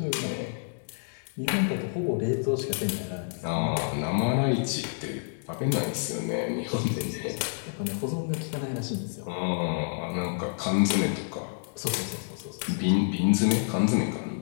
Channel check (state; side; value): silent; right; digital silence